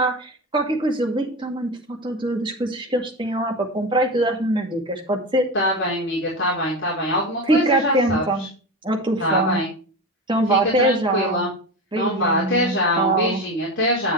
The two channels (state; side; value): normal; both; correlation 0.23